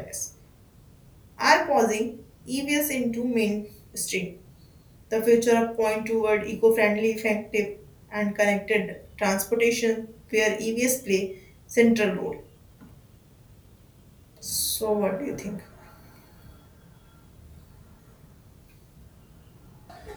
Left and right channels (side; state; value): both; identical; correlation 1.00